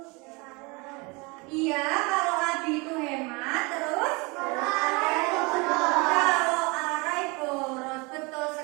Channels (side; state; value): left; quieter; 27.6 dB